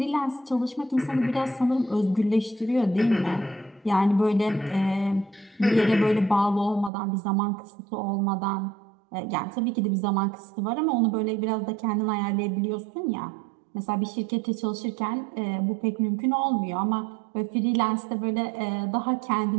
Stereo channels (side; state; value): left; drops out; at 6.9 s